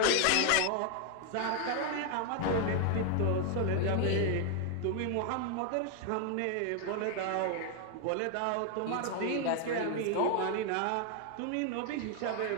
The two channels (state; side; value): different; both; correlation 0.00